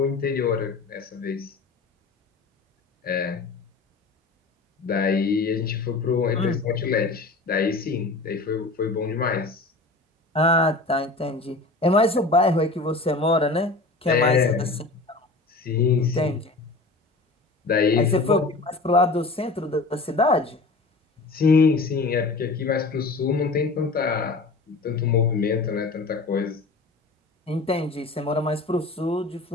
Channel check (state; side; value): quieter; right; 3.5 dB